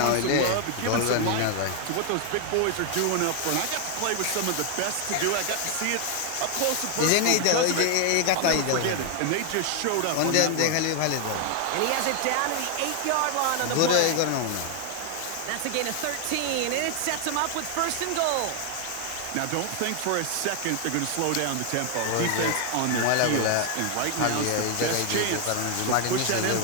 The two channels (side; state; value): both; different; correlation 0.00